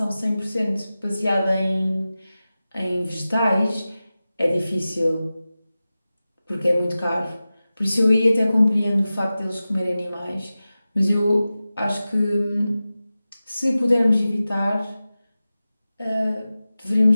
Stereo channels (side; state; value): both; inverted; correlation -0.95